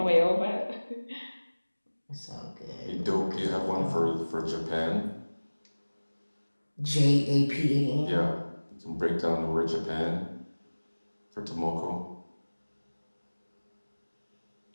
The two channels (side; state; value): both; inverted; correlation -1.00